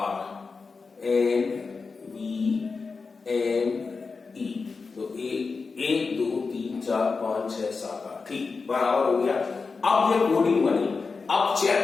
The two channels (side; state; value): right; quieter; 4.6 dB